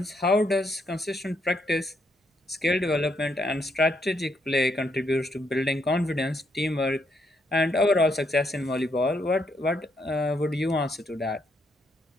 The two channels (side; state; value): both; normal; correlation 0.76